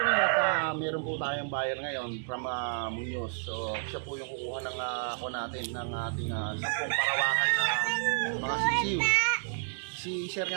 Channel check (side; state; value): left; silent; digital silence